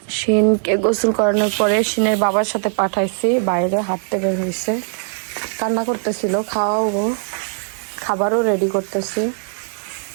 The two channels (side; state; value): left; silent; digital silence